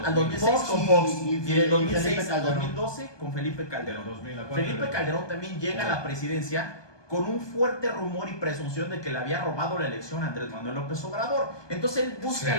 al 2006 con Fox. Y del 2006 al Calderón. 2012 con Felipe Calderón. 2000 a Felipe Calderón también llega a la presidencia con un fuerte rumor y presunción de que le había robado la elección a Andrés Manuel López Obrador. Entonces él busca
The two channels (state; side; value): late; right; 1.2 ms